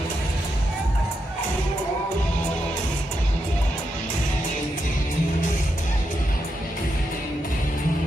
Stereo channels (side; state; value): both; normal; correlation 0.84